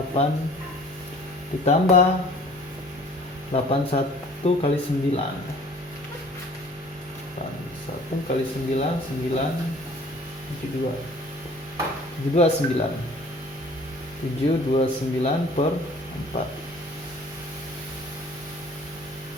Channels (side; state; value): both; normal; correlation 0.51